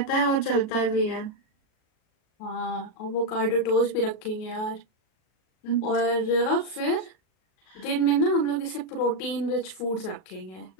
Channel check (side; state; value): right; late; 37 ms